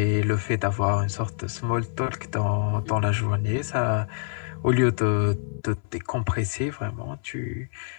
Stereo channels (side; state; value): right; silent; 61 dB below the other